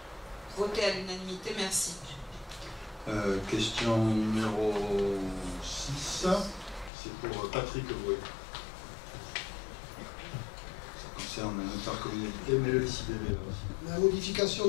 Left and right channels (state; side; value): drops out; right; at 6.9 s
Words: Votez à l'unanimité, merci. Question numéro 6, c'est pour Patrick Bouet. Ça concerne l'intercommunalité, mais le SIBVA aussi. La modification